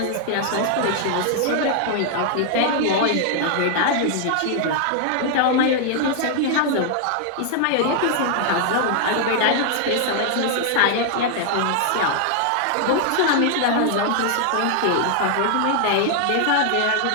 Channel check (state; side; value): different; both; correlation 0.00